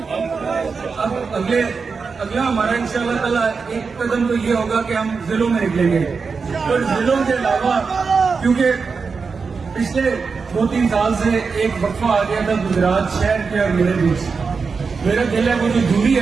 اگلا ہمارا انشاءاللہ تعالیٰ ایک قدم تو یہ ہوگا کہ ہم ضلعوں میں نکلیں گے. اور ضلعوں کے علاوہ کیونکہ پچھلے 2-3 سال سے ایک وقفہ آ گیا تھا گجرات شہر کے اور میرے بیچ, میرا دل ہے وہ جو دوری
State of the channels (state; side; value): quieter; left; 5.0 dB